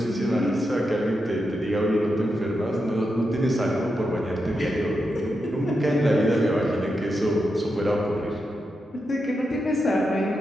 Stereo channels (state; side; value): normal; both; correlation 0.86